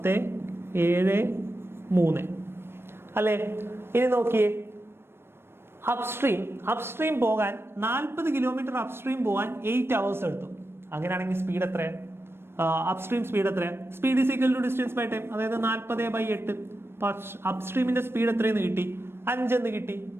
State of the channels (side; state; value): left; late; 0.12 ms